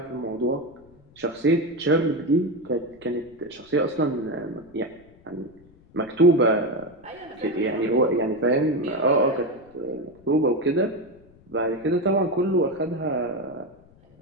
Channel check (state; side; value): noise; left; rumble, 27 dB below the sound